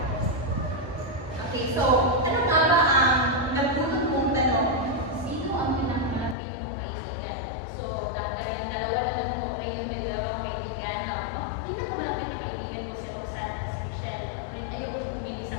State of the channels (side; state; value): right; drops out; at 6.4 s